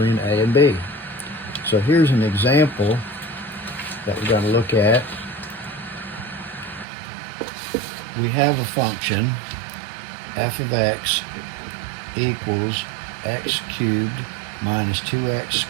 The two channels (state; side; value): drops out; left; at 6.9 s